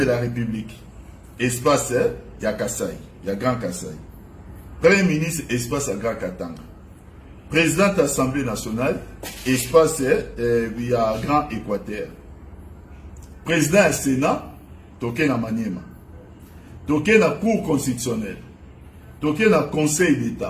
la République. Espace ya Kasai, ya Grand Kasai. Premier ministre espace ya Grand Katanga. Président de l'Assemblée nationale, espace il y a Grand Équateur. Président du Sénat, toké na Maniema. Toké na Cour constitutionnelle. Toké na Conseil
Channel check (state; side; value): identical; both; correlation 1.00